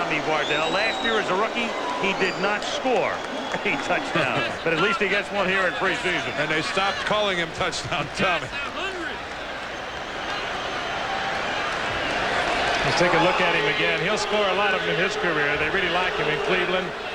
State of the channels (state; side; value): identical; both; correlation 1.00